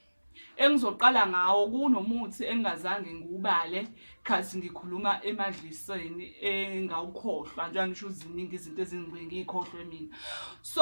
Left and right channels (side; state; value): both; inverted; correlation -1.00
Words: Engizoqala ngawo kunomuthi engazange ngiubale khathi ngikhuluma emadliseni engawukhohlwa, njengoba ngisho ziningi izinto ezingibeke ngikhohlwe mina.